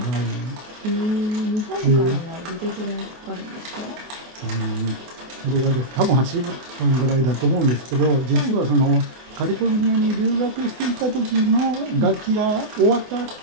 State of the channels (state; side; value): late; left; 24 ms